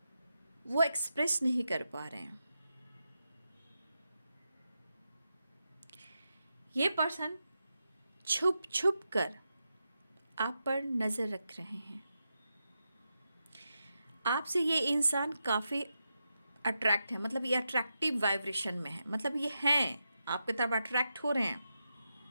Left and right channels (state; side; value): inverted; both; correlation -0.87